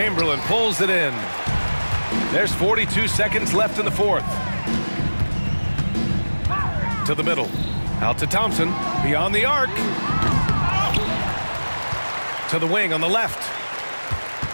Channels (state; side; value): inverted; both; correlation -1.00